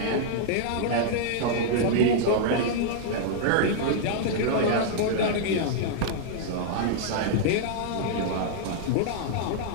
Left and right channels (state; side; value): different; both; correlation -0.01